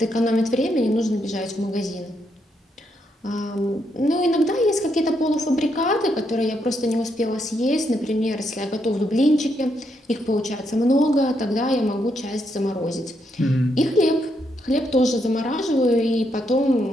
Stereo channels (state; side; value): normal; both; correlation 0.78